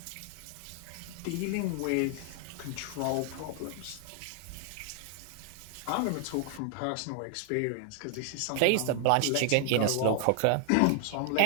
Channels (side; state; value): both; different; correlation 0.00